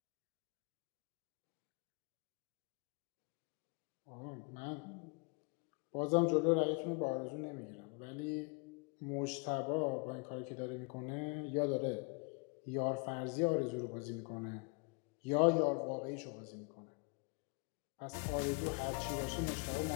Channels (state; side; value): quieter; right; 32.3 dB